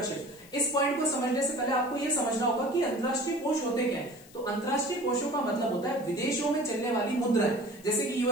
इस पॉइंट को समझने से पहले आपको यह समझना होगा कि अंतर्राष्ट्रीय कोष होते क्या है। तो अंतर्राष्ट्रीय कोषों का मतलब होता है विदेशों में चलने वाली मुद्राएं। जैसे कि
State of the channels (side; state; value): left; noise; hiss, 23 dB below the sound